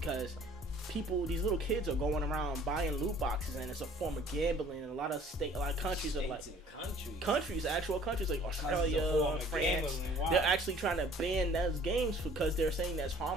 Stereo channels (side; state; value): both; normal; correlation 0.52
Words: these little kids are going around buying loot boxes, and it's a form of gambling. And a lot of countries are like actual countries like Australia, France. Wow. They're actually trying to ban those games because they're saying that's